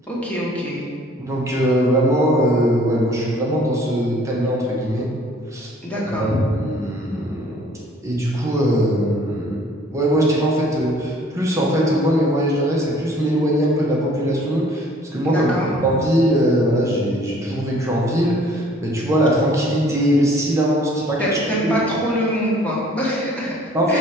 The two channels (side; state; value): both; normal; correlation 0.55